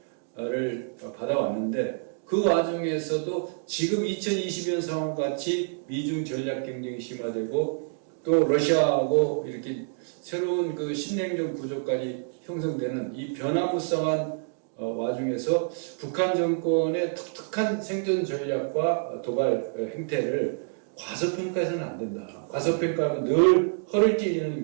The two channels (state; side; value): silent; left; digital silence